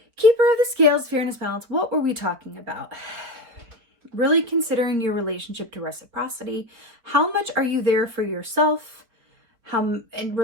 Keeper of the scales, fairness, balance. What were we talking about? Really considering your relationship to reciprocity. How much are you there for yourself? How in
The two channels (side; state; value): left; late; 4.8 ms